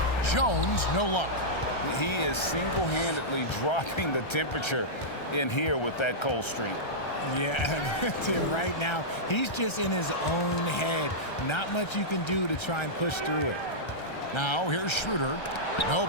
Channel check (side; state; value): right; late; 1.3 ms